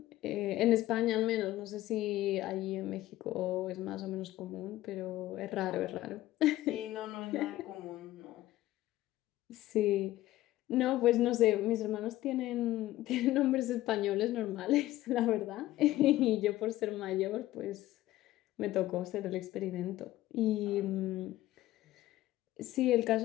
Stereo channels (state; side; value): quieter; right; 15.6 dB